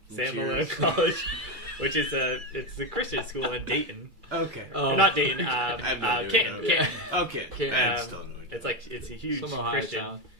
Sam Malone College, which is it's a Christian school in Dayton. Okay. Oh. Not Dayton. Canton. Canton. Okay. Canton. It's a huge Some Ohio Christian. town.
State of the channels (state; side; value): late; left; 2.3 ms